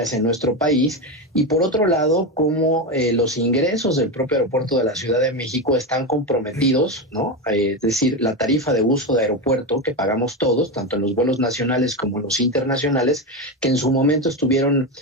en nuestro país. Y por otro lado, cómo los ingresos del propio aeropuerto de la Ciudad de México están comprometidos, ¿no? Es decir, la tarifa de uso de aeropuerto que pagamos todos, tanto en los vuelos nacionales como en los internacionales, que en su momento estuvieron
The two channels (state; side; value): normal; both; correlation 0.14